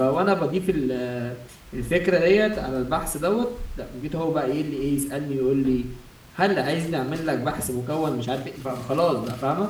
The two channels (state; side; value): identical; both; correlation 1.00